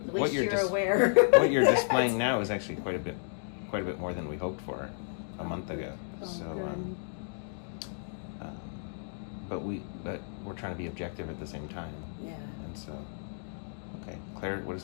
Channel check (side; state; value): right; silent; digital silence